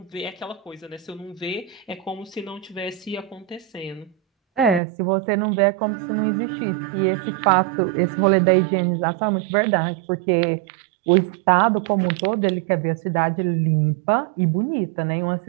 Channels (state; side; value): drops out; left; at 4.8 s